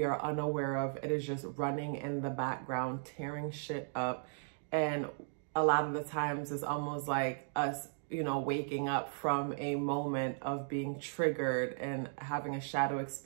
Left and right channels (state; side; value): silent; left; digital silence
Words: are unaware of. It is just running in the background, tearing shit up. And a lot of the times it's almost like us you know, waking up from a moment of being triggered and having a shadow